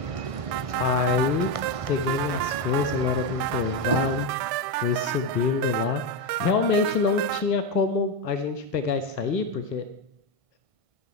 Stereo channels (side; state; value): left; late; 1.7 ms